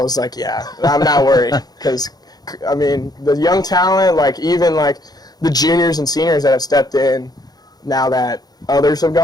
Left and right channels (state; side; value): late; right; 0.19 ms